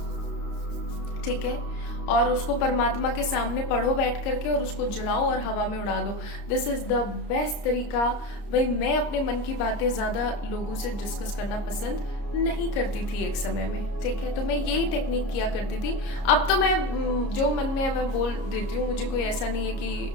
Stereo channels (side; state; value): right; late; 30 ms